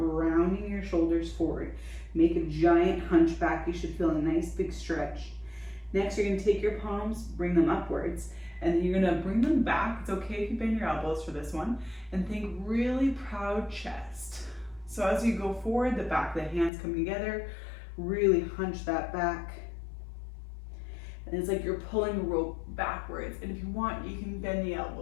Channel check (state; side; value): drops out; right; at 16.7 s